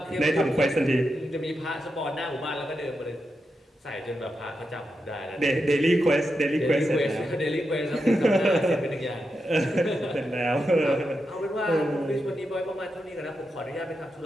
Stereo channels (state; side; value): normal; both; correlation 0.87